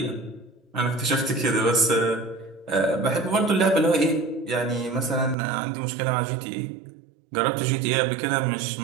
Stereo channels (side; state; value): left; drops out; at 5.4 s